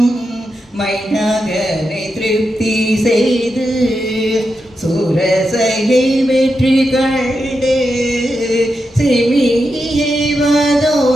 மைனாகனை திருப்தி செய்து சூரசையை வெற்றி கண்டு சிமியை வதோ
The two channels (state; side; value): normal; both; correlation 0.87